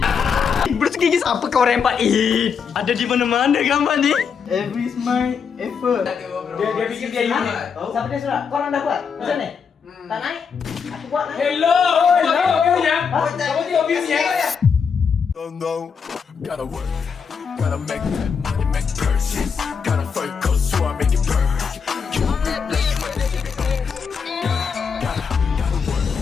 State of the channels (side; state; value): right; quieter; 6.3 dB